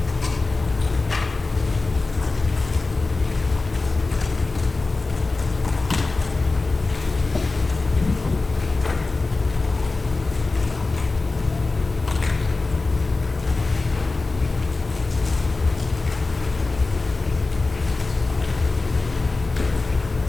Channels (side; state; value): right; quieter; 3.5 dB